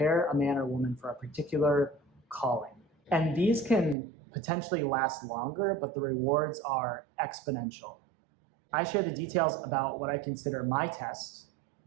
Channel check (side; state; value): left; drops out; at 4.0 s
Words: a man or woman for a particular calling. And these can potentially last longer, but the rewards are exponential. I share the details about what I consider my test,